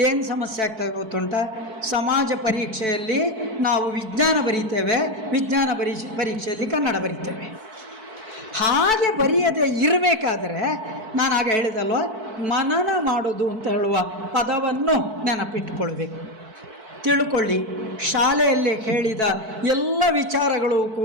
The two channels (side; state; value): left; late; 4.5 ms